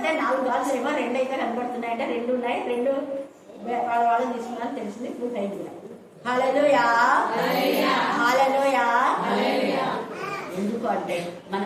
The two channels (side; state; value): both; identical; correlation 1.00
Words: 4 గాజులు ఏమో 2 అయితే కనబడుతున్నాయి అంటే 2 ఉన్నాయి. 2 వాళ్ళని తీసుకున్నారని తెలిసింది. ఇప్పుడు అయింది కూడా. హల్లెలూయా హల్లెలూయా. ఎందుకు అంటే